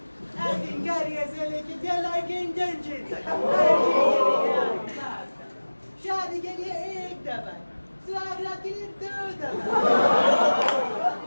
एक्टिंग करियर से लेके टेलर के इंटर्नशिप तक, हर चीज़ के लिए आपके पास था। शादी के लिए एक दफा, स्वागत के लिए 2 दफा,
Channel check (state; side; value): inverted; both; correlation -1.00